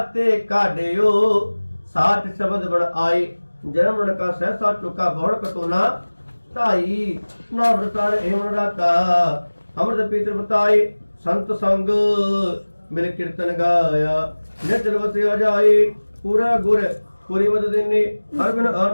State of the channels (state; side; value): inverted; both; correlation -1.00